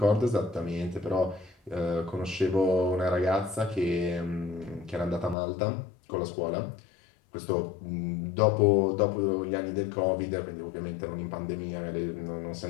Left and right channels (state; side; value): drops out; right; at 5.4 s